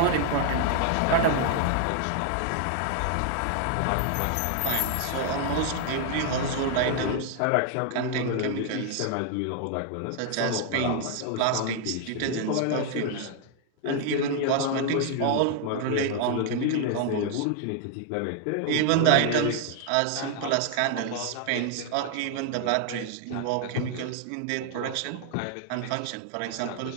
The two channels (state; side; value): different; both; correlation 0.00